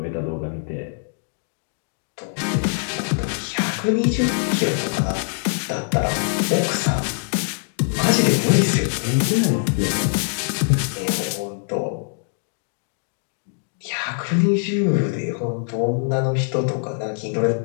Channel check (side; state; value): right; silent; digital silence